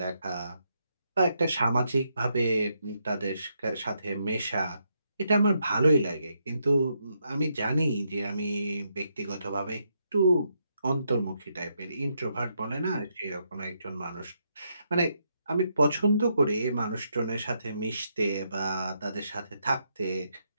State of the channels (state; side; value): inverted; both; correlation -0.79